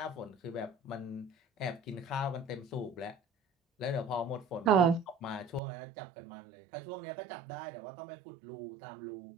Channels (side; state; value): left; drops out; at 5.6 s